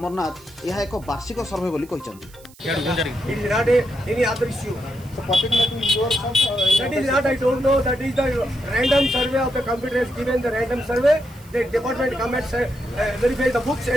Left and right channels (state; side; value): noise; right; hiss, 24 dB below the sound